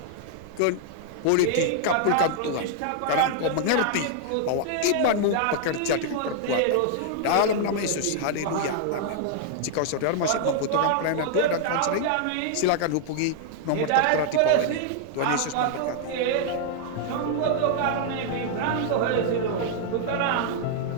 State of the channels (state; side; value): different; both; correlation -0.01